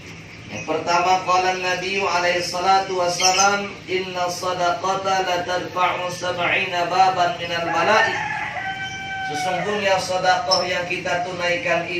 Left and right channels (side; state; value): both; identical; correlation 1.00